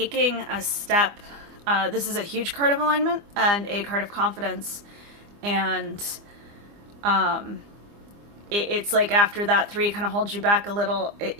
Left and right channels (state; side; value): late; left; 25 ms